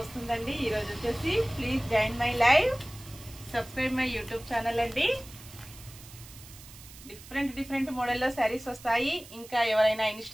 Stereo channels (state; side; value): noise; right; hiss, 18 dB below the sound